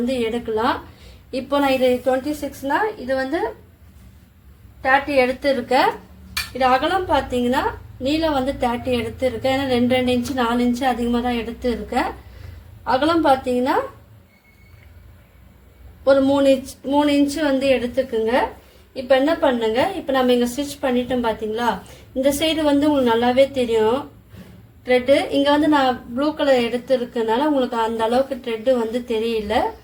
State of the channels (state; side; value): identical; both; correlation 1.00